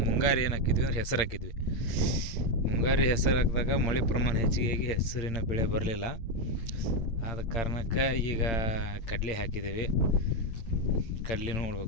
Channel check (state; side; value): late; right; 8.7 ms